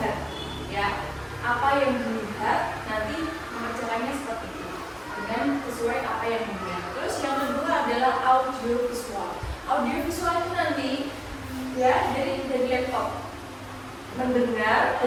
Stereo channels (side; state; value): both; identical; correlation 1.00